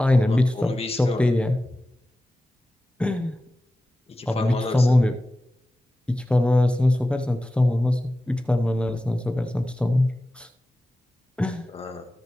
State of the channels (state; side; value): normal; both; correlation 0.95